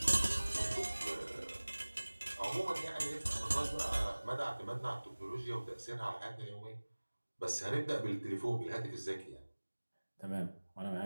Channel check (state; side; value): inverted; both; correlation -1.00